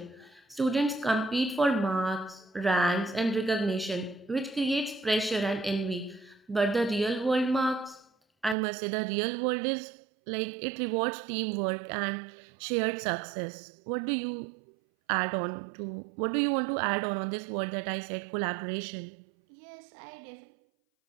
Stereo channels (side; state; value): left; drops out; at 8.6 s